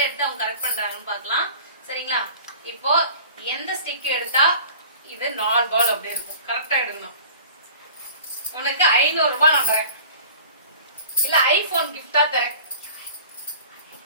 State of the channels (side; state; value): both; inverted; correlation -0.44